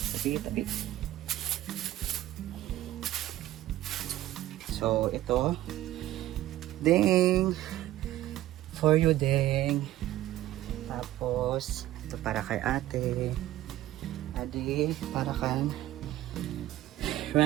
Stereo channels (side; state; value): left; quieter; 14.6 dB